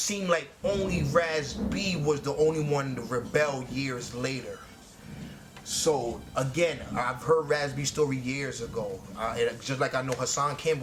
like only Raz B was the only one to rebel years later. So again, I've heard Raz B's story years ago, just like I know Hassan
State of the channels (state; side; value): identical; both; correlation 1.00